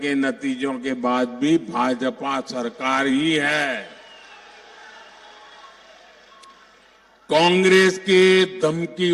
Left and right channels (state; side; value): identical; both; correlation 1.00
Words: नतीजों के बाद भी भाजपा सरकार ही है। कांग्रेस के